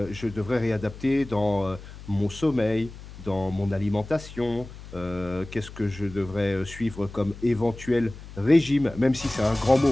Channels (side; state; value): left; noise; hum, 15 dB below the sound